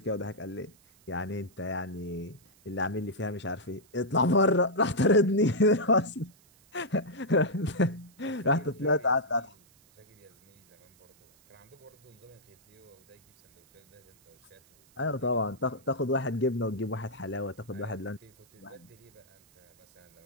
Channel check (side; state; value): right; noise; hiss, 30 dB below the sound